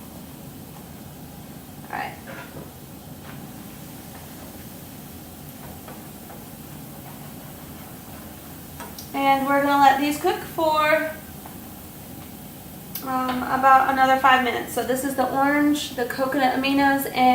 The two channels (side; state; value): both; identical; correlation 1.00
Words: And we're going to let these cook for about another 5 minutes. So this is the orange, the coconut aminos,